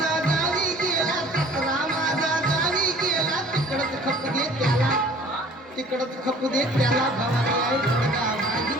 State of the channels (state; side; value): normal; both; correlation 0.51